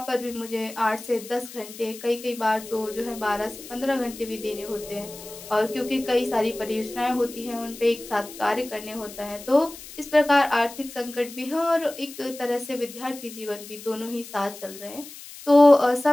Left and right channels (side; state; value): left; noise; hiss, 15 dB below the sound